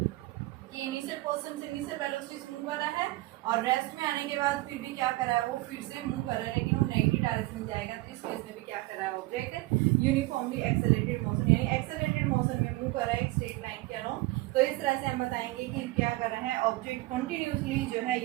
कि इनिशियल पोजीशन से इनिशियल वेलोसिटी मूव कर रहा है और रेस्ट में आने के बाद फिर भी क्या कर रहा है, वो फिर से मूव कर रहा है, लेकिन वो नेगेटिव डायरेक्शन में जाएगा। तो इस केस में भी क्या कर रहा है, ऑब्जेक्ट यूनिफॉर्मली एक्सेलरेटेड मोशन यानी एक्सेलरेटेड मोशन में मूव कर रहा है एक स्ट्रेट लाइन के अलोंग। तो इस तरह से हम बताएंगे कि क्या कर रहा है, ऑब्जेक्ट कंटिन्यूसली जो है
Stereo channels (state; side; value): quieter; left; 20.1 dB